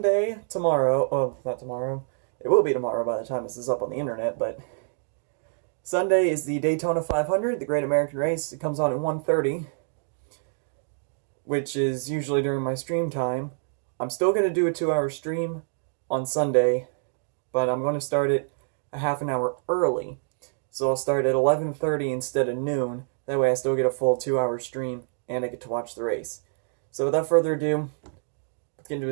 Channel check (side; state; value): left; silent; 60 dB below the other